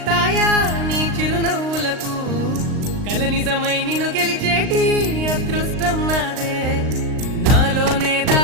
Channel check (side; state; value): left; late; 39 ms